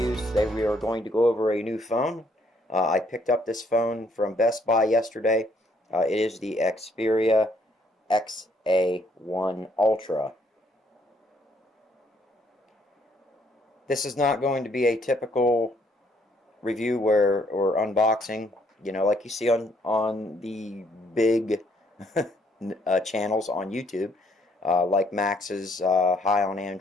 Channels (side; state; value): both; normal; correlation 0.67